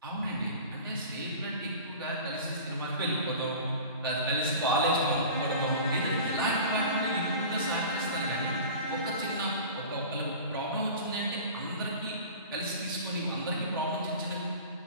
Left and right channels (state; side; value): inverted; both; correlation -0.38